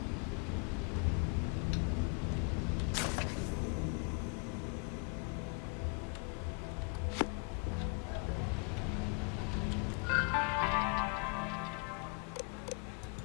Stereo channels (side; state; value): right; quieter; 33.7 dB